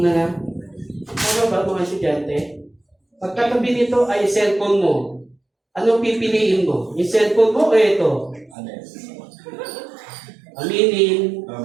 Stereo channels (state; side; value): drops out; left; at 8.6 s